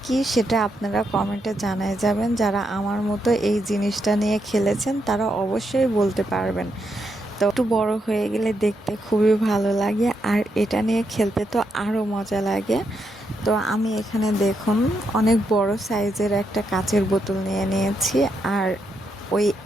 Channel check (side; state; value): both; normal; correlation 0.81